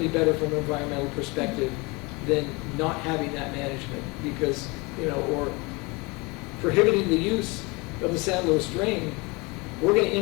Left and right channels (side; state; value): right; quieter; 26.6 dB